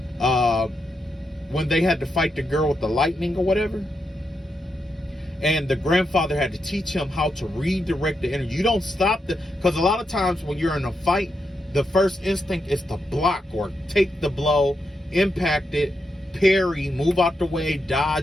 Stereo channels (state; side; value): normal; both; correlation 0.84